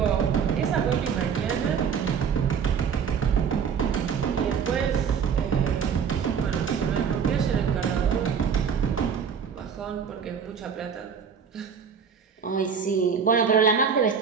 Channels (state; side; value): quieter; left; 6.8 dB